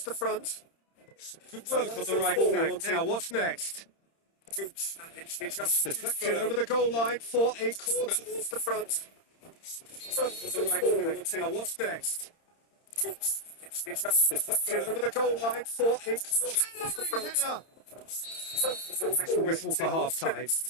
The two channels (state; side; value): late; right; 30 ms